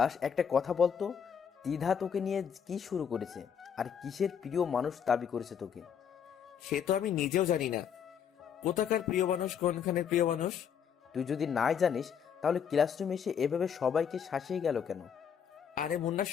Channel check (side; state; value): right; quieter; 7.8 dB